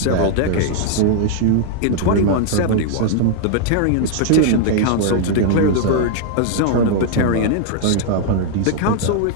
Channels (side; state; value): both; different; correlation 0.00